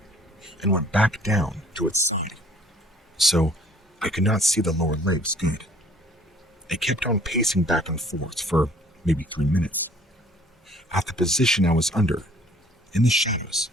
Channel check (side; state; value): both; normal; correlation 0.56